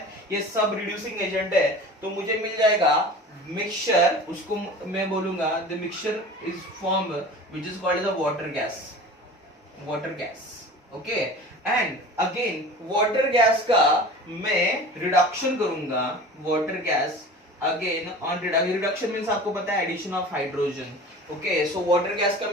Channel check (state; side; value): normal; both; correlation 0.38